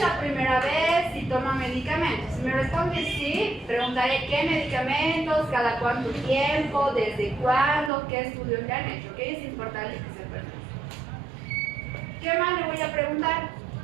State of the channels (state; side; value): drops out; left; at 7.9 s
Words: la primera vez, si toma medicamentos. Si me responde sí, preguntaré qué medicamentos, cada cuánto tiempo, desde cuándo, qué estudios le han hecho. ¿Ok? Es importante que sepan. ¿Qué más le voy a preguntar?